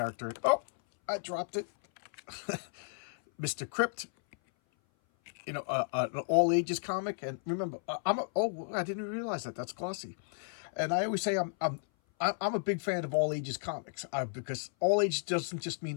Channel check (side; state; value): right; silent; 56 dB below the other